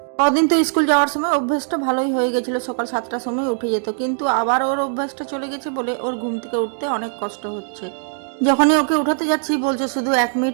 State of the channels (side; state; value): left; silent; digital silence